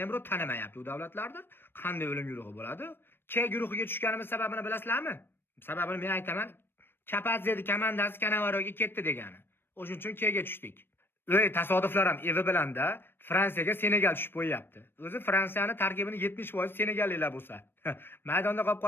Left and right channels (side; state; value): right; late; 0.10 ms